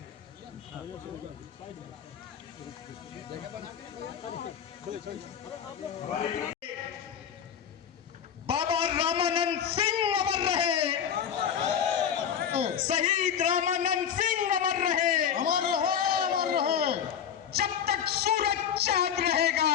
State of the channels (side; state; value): right; quieter; 8.4 dB